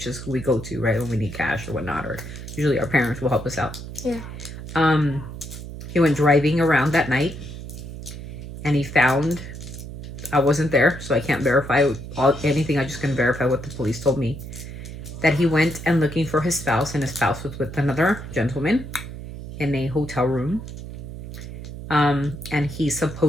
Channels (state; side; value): noise; right; hum, 10 dB below the sound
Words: is who we go to, right, when we need cash or whatnot, or usually our parents will help us out. Yeah. He went driving around that night, and he found, I wasn't there, so I can't verify anything. I just can verify what the police told me, that he went and looking for his spouse, and his spouse was with another gentleman in a hotel room. And he